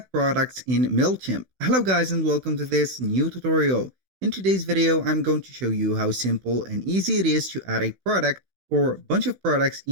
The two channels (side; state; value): left; late; 16 ms